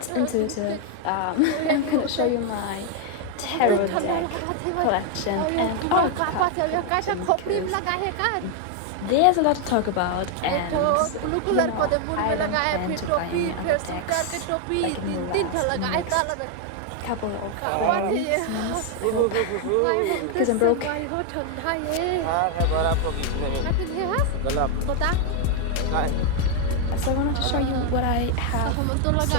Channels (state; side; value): different; both; correlation 0.00